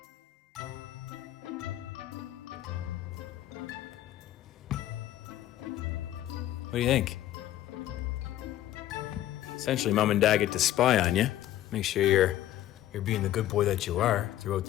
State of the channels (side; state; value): right; quieter; 13.3 dB